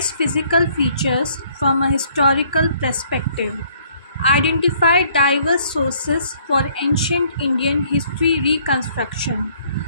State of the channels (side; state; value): both; inverted; correlation -0.63